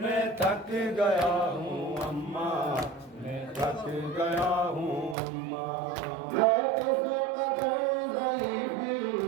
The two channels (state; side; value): drops out; left; at 5.2 s